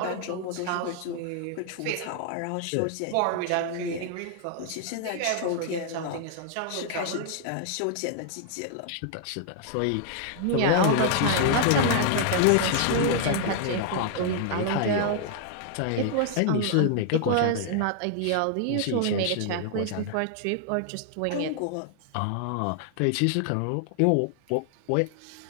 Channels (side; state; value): both; different; correlation 0.00